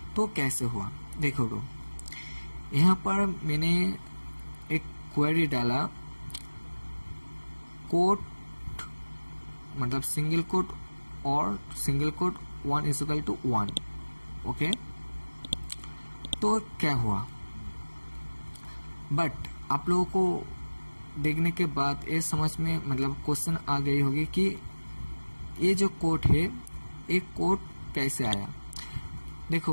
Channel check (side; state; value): both; inverted; correlation -1.00